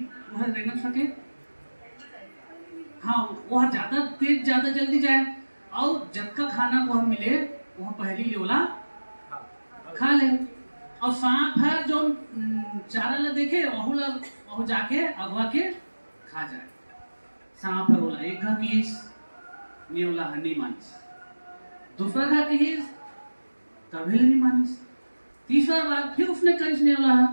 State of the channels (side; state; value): both; inverted; correlation -1.00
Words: वह रेंगन सके, हाँ वह ज्यादा तेज ज्यादा जल्दी जाए और जब का खाना वह मिले वह पहली नेवला खा ले। और सांप है जो चारा ला देखे वह जाके अगवा के खा जाए। सांप है बोला एक घा कीस, नेवला है नहीं मानिस। दूसरा घा कीस, कभी नहीं मानिस। तीसरा बार फिर उसने करीस नेवला है,